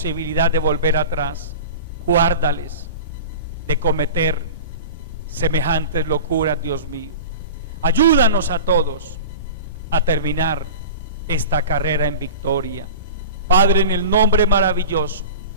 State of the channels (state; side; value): inverted; both; correlation -0.34